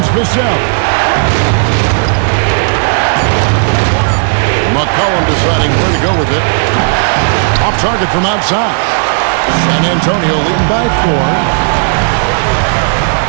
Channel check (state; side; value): silent; left; digital silence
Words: Vassell. McCollum deciding where to go with it. Off target from outside. San Antonio leading by 4.